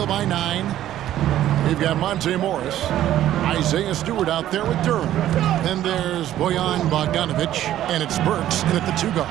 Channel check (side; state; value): left; quieter; 12.6 dB